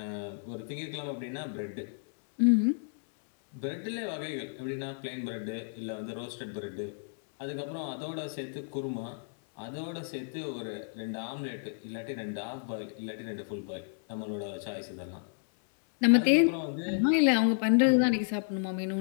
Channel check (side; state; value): right; silent; 56 dB below the other